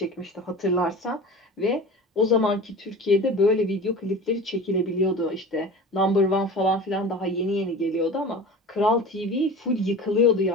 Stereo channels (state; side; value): normal; both; correlation 0.35